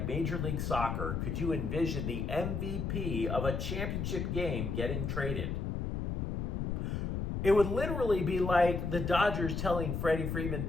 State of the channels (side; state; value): left; noise; rumble, 2 dB below the sound